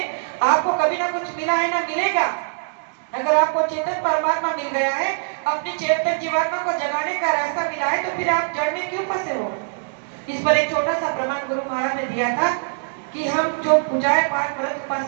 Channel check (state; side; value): silent; left; digital silence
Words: आपको कभी ना कुछ मिला है ना मिलेगा। अगर आपको चेतन परमात्मा मिल गया है, अपनी चेतन जीवात्मा को जगाने का रास्ता मिला है, तो फिर आप जड़ में क्यों फंसे हो। इस पर एक छोटा सा प्रमाण गुरु महाराज ने दिया था कि हम जो पूजाएं पाठ व्रत